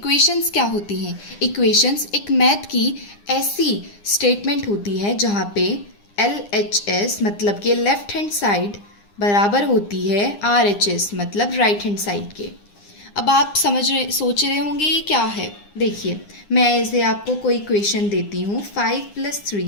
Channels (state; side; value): late; right; 9.8 ms